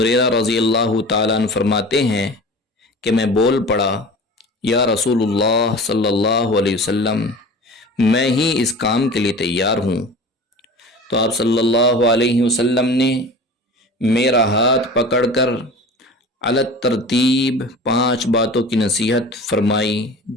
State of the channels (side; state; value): both; normal; correlation 0.38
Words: رضی اللہ تعالیٰ عنہ فرماتے ہیں کہ میں بول پڑا، یا رسول اللہ صلی اللہ علیہ وسلم، میں ہی اس کام کے لیے تیار ہوں۔ تو آپ صلی اللہ علیہ وسلم نے میرا ہاتھ پکڑ کر علی ترتیب 5 باتوں کی نصیحت فرمائی